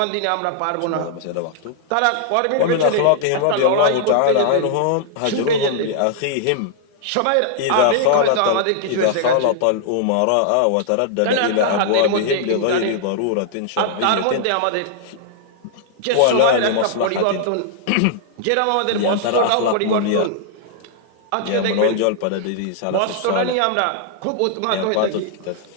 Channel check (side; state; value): both; different; correlation -0.01